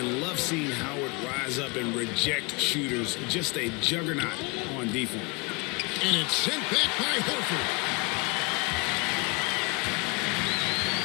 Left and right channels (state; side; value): quieter; right; 28.5 dB